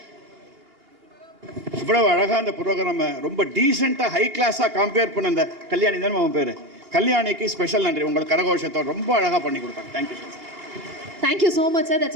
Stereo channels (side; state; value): left; late; 2.9 ms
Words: இவ்வளவு அழகாக அந்த ப்ரோக்ராம் ரொம்ப டீசெண்டாக ஹை கிளாஸாக கம்பேர் பண்ண அந்த கல்யாணி தானே அவன் பேர், கல்யாணிக்கு ஸ்பெஷல் நன்றி. உங்களுக்கு கரகோஷத்தோடு ரொம்ப அழகாக பண்ணி கொடுத்தாங்க. Thank you so much. Thank you so much, sir.